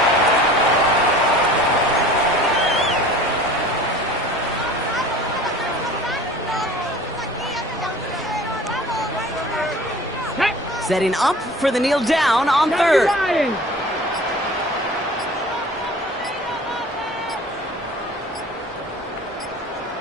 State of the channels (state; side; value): normal; both; correlation 0.43